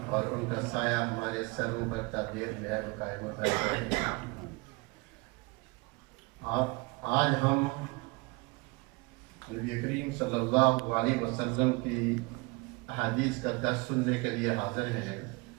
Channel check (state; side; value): quieter; left; 26.9 dB